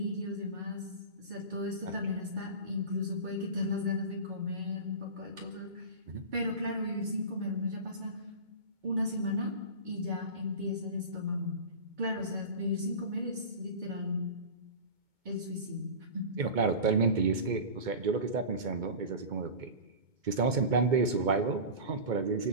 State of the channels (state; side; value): late; left; 2.2 ms